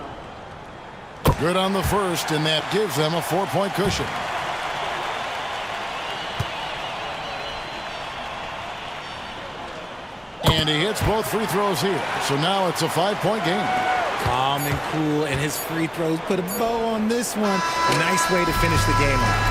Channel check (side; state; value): both; identical; correlation 1.00